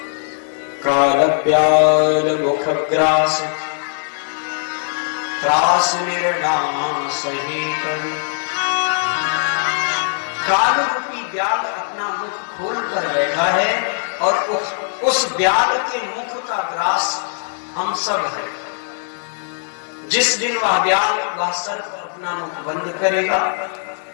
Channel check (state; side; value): silent; right; digital silence